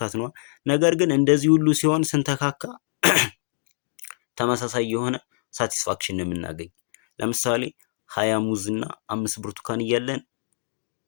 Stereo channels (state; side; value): silent; right; digital silence